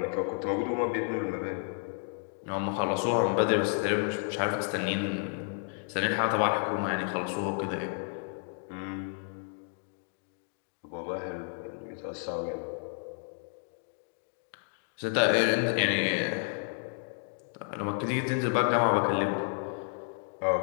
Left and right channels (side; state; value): right; silent; 57 dB below the other